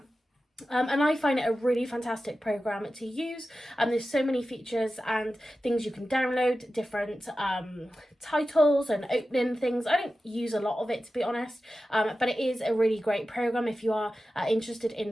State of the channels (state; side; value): normal; both; correlation 0.93